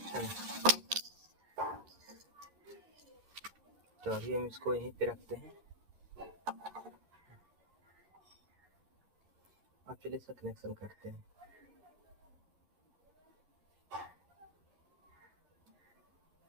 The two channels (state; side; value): late; left; 11 ms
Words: तो अभी हम इसको यहीं पे रखते हैं। अब चलिए इसका कनेक्शन करते हैं।